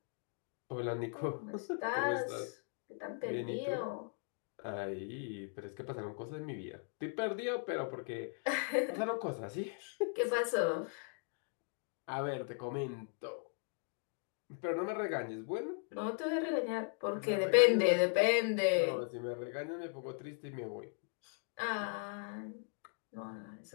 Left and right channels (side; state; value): right; silent; 52 dB below the other